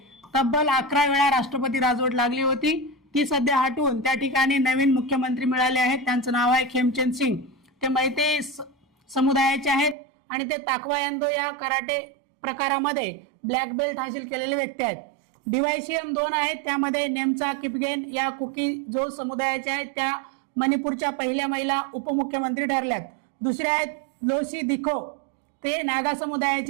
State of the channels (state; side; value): drops out; left; at 10.0 s